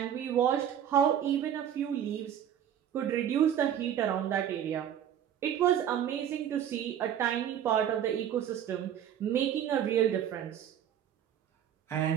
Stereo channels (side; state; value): left; quieter; 9.8 dB